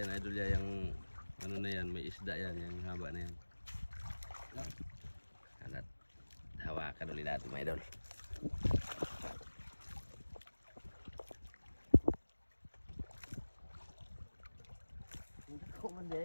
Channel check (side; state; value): both; inverted; correlation -1.00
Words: na idol yan, yung ano na yan, may isda yan, yung haba na yan. Hanat, hawakan ulit natin, mga idol. Hindi ko man